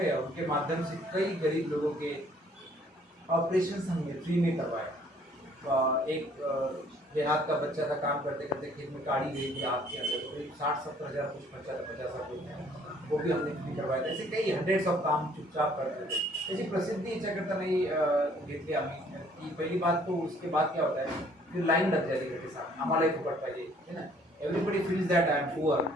और उनके माध्यम से कई गरीब लोगों के ऑपरेशन हमने फ्री में करवाए। एक देहात का बच्चा था, काम करते करते खेत में काड़ी गई थी हाथ के अंदर, तो करीब 60-70 हज़ार कुछ खर्चा था, 50 रुपये, वो भी हमने फ्री करवाया था। ऐसे कई हंड्रेड्स ऑफ काम चुपचाप करते थे। त्याची प्रसिद्धी याच्याकरता नाही घेतली आम्ही की पहिली बात। तो उसके बाद क्या होता है, फिर लाइन लग जाती है, साथ आम्हालाही फुकट पाहिजे, है ना। Everybody feels that I am poor,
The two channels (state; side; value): normal; both; correlation 0.60